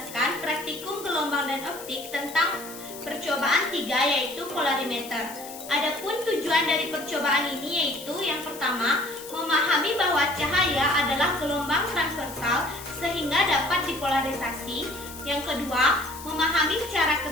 praktikum gelombang dan optik tentang percobaan 3, yaitu polarimeter. Adapun tujuan dari percobaan ini yaitu yang pertama, memahami bahwa cahaya adalah gelombang transversal sehingga dapat dipolarisasi. Yang kedua, memahami cara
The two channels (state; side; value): noise; left; hiss, 14 dB below the sound